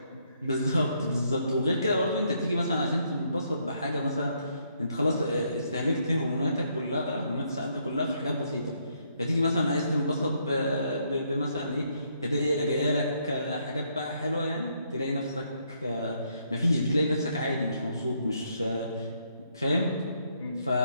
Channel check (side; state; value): both; inverted; correlation -0.73